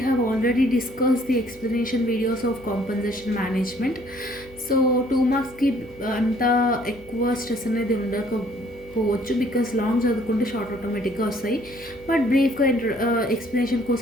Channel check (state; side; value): noise; left; hum, 22 dB below the sound